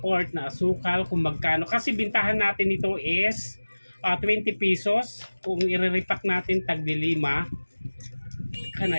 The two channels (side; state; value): both; inverted; correlation -1.00